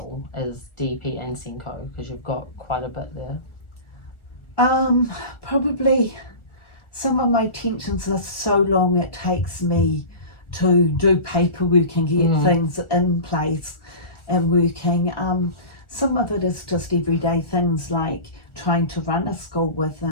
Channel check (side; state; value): right; late; 1.5 ms